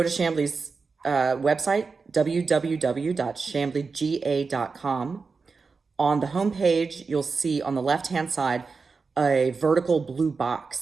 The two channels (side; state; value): left; quieter; 4.7 dB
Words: to Chamblee's website, www.chambleega.com. On the homepage, you'll see on the left-hand side a vertical blue